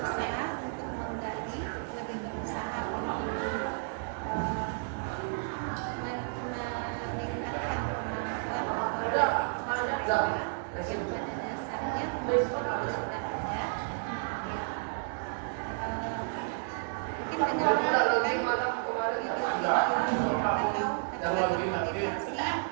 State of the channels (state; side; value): silent; left; digital silence